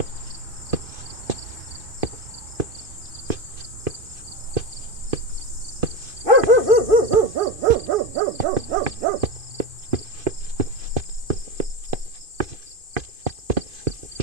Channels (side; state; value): left; late; 2.5 ms